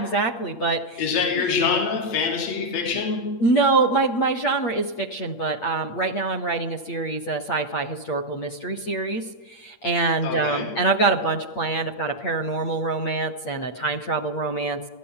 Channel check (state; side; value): late; right; 8.6 ms